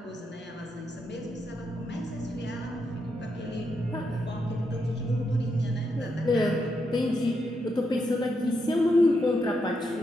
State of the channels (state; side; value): normal; both; correlation 0.82